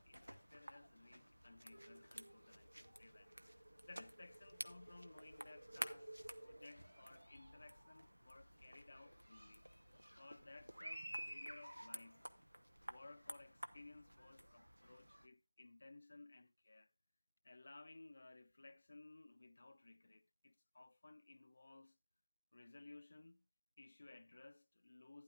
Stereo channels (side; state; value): both; inverted; correlation -0.99